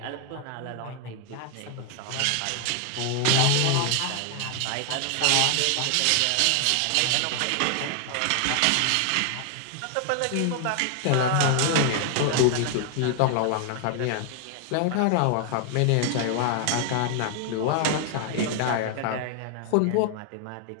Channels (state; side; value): different; both; correlation 0.00